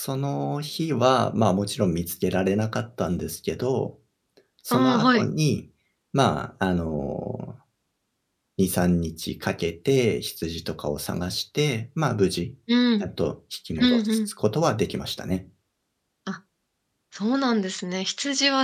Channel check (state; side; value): identical; both; correlation 1.00